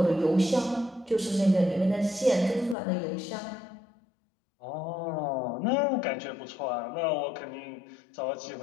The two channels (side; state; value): right; drops out; at 2.8 s